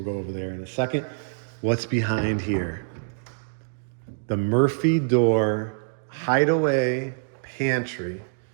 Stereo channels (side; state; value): left; silent; digital silence